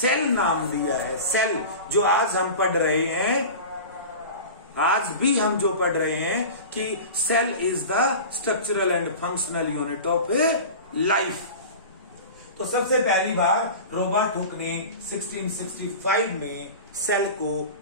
नाम दिया है। सेल जो आज हम पढ़ रहे हैं, आज भी हम जो पढ़ रहे हैं कि cell is the structural and functional unit of life. तो सबसे पहली बार रॉबर्ट हुक ने 1665 में सेल को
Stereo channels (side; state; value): both; inverted; correlation -0.34